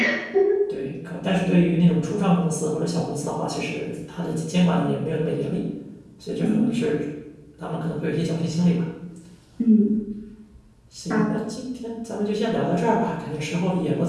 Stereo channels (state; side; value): identical; both; correlation 1.00